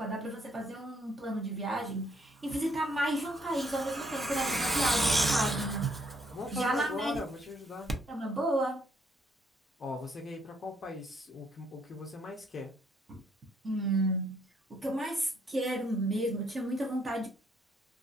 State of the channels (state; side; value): normal; both; correlation 0.70